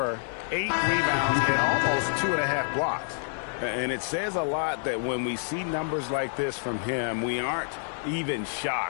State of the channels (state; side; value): silent; right; 59 dB below the other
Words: 8 rebounds, and almost 2.5 blocks. And it says a lot that when we see numbers like this from him, we aren't even